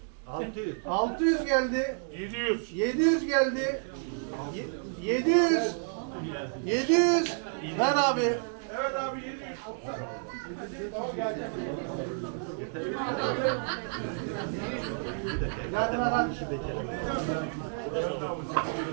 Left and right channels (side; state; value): left; silent; digital silence